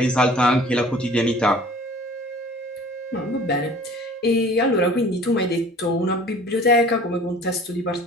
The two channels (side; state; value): both; normal; correlation 0.47